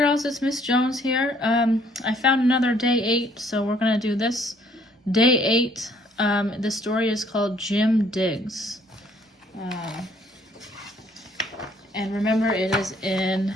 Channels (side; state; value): both; normal; correlation 0.63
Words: it's Miss Jones here. I found another day 8, so we're going to do this. Day 8, the story is called Jim Digs. And remember, it is in